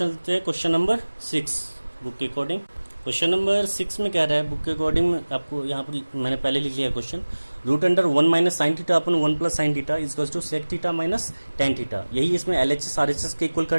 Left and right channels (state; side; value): inverted; both; correlation -1.00